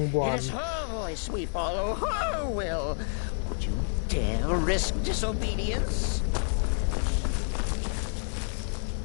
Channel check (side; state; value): right; silent; digital silence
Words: 1. It is her voice we follow, her will. Would you dare risk disobedience?